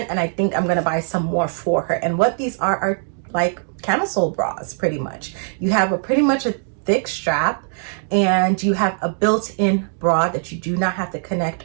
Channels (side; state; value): left; silent; 61 dB below the other